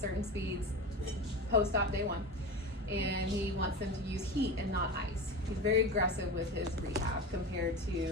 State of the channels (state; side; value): normal; both; correlation 0.27